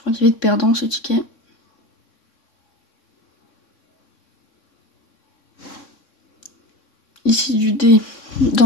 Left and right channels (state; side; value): late; right; 3.6 ms